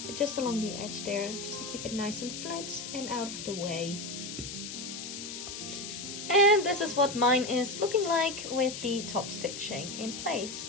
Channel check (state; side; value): noise; left; hiss, 8 dB below the sound